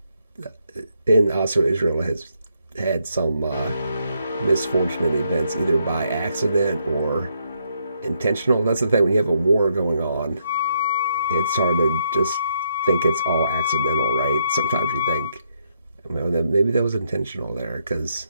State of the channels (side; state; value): both; inverted; correlation -0.76